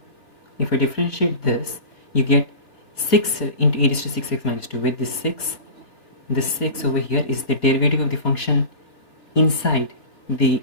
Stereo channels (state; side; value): late; right; 3.6 ms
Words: you get 6 into e raised to 6x minus 2, where this 6 over here is the derivative of the function inside the